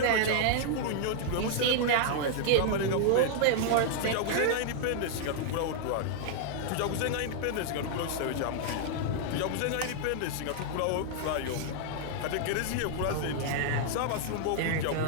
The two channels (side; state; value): both; different; correlation 0.00